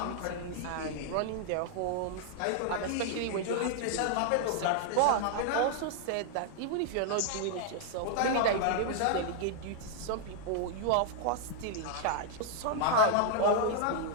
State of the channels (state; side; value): different; both; correlation -0.01